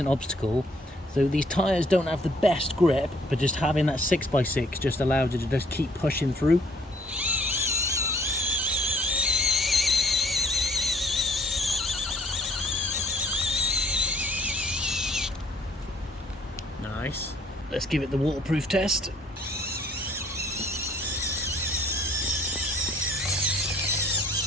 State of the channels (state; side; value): normal; both; correlation 0.61